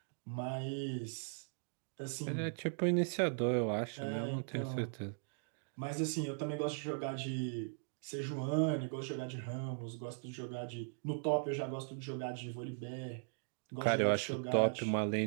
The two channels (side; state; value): left; silent; digital silence